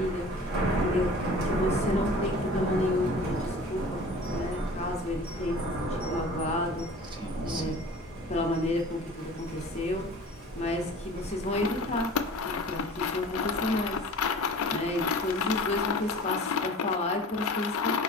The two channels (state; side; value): normal; both; correlation 0.42